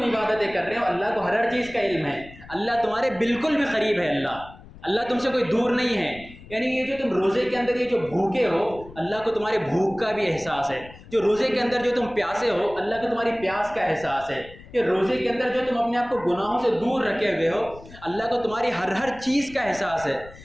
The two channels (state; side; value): noise; left; rumble, 19 dB below the sound